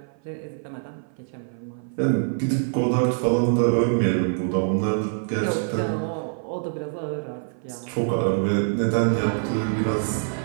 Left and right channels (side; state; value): left; silent; 56 dB below the other